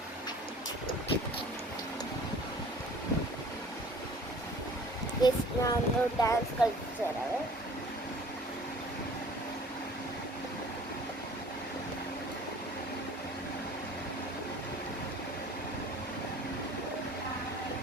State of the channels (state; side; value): normal; both; correlation 0.49